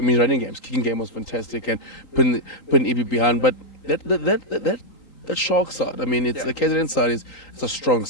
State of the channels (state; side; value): late; right; 3.8 ms